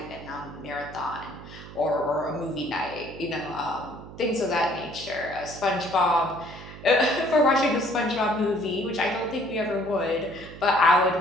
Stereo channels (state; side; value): noise; right; hum, 15 dB below the sound